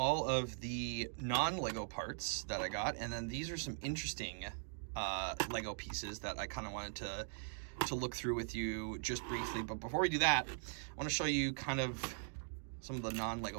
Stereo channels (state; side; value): silent; left; digital silence